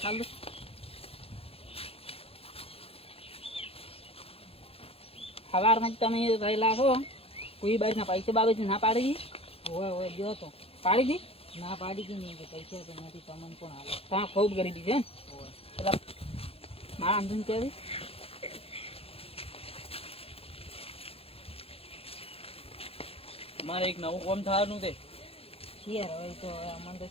દો સવારમાં જ તમે રહેલા છો કોઈ બાજુના પૈસા બાબત ના પાડી દી હોય ગયો તો પાડી દી ના પાડી દી નહીં કે પૈસા તો નથી તમને પણ હાલે તમે ખૂબ ગરીબી છે ને એટલે મારા આંદોલન કહેવી મારે એક નવું કામ થવાનું છે શિયાર હોય તો અમને તો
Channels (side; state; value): right; late; 0.28 ms